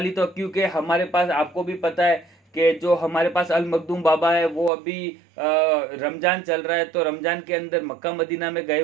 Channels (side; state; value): left; drops out; at 4.7 s